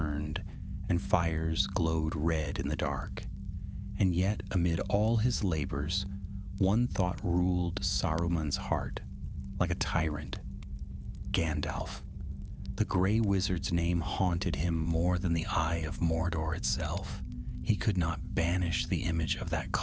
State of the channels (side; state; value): both; identical; correlation 1.00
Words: and fires glowed red in the dark. And yet, amid all his labors, one thought ruled Saruman's heart, like a tyrant: Gandalf. The Grey Wizard's name haunted him more than the eye of Mordor itself. He could not banish the image of that